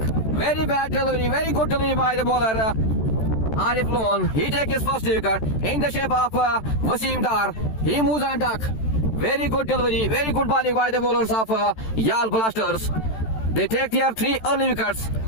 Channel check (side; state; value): right; late; 13 ms